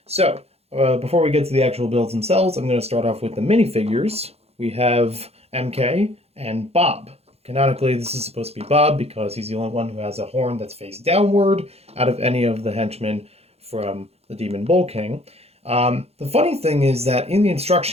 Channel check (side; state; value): left; late; 0.30 ms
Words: So, before we get to the actual builds themselves, I'm going to start off with the minifigures. We have MK and Bob. Canonically, this is supposed to be Bob because he's the only one who has a horn that's face downward out of any of the henchmen from the Demon Bull King. The funny thing is that in the